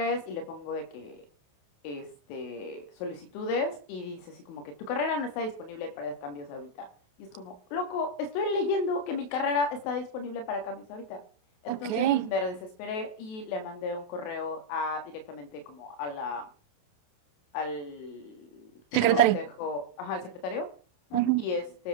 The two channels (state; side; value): late; right; 28 ms